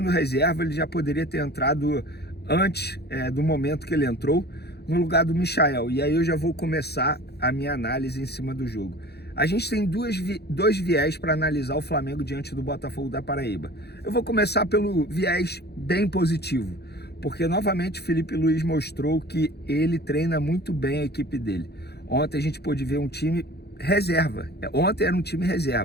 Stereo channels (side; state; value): right; late; 0.48 ms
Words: reserva, ele já poderia ter entrado antes do momento que ele entrou, no lugar do Michael. E aí eu já vou começar a minha análise em cima do jogo. A gente tem dois viés para analisar o Flamengo diante do Botafogo da Paraíba. Eu vou começar pelo viés bem positivo, porque novamente Felipe Luiz mostrou que ele treina muito bem a equipe dele. Ontem a gente pôde ver um time reserva. Ontem era um time